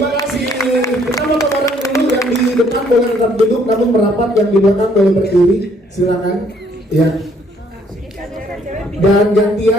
kasih. Kita mau orang dulu yang di depan boleh tetap duduk, namun merapat, yang di belakang boleh berdiri. Silakan. Ya. Dan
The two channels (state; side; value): normal; both; correlation 0.65